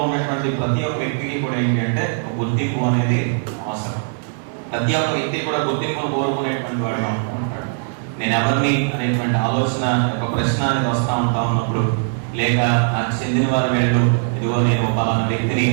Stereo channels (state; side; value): silent; left; 57 dB below the other